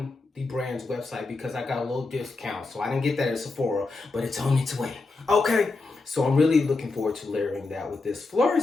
the brand's website because I got a little discount. So I didn't get that at Sephora, but it's on its way. Okay, so I'm really looking forward to layering that with this.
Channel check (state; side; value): quieter; right; 3.6 dB